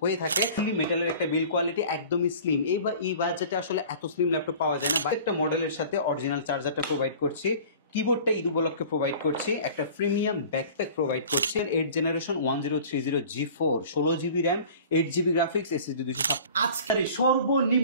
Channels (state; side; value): inverted; both; correlation -0.44